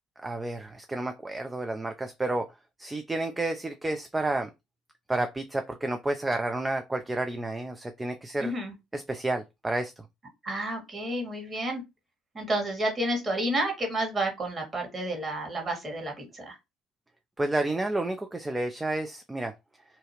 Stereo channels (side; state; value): both; normal; correlation 0.84